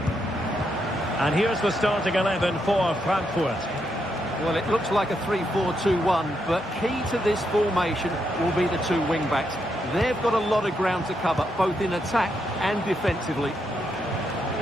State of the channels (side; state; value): both; normal; correlation 0.80